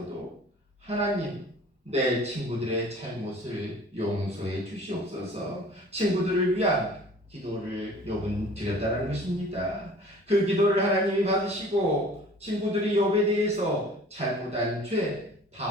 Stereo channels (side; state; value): both; normal; correlation 0.48